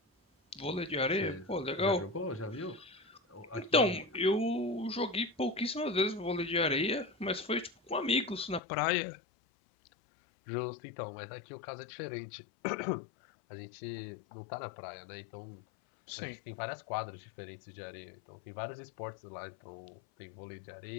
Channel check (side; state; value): right; drops out; at 8.6 s